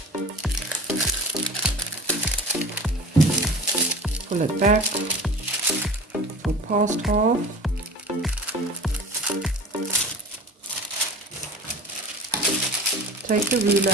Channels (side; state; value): both; normal; correlation 0.37